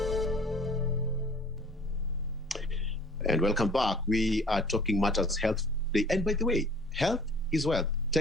And welcome back. We are talking matters health today. And by the way, health is wealth.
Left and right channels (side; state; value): both; normal; correlation 0.51